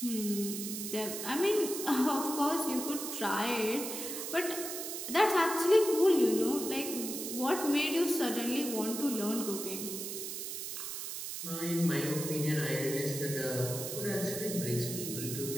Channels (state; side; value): noise; right; hiss, 6 dB below the sound